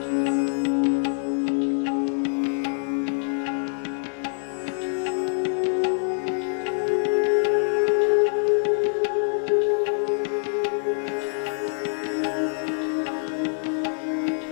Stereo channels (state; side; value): silent; right; digital silence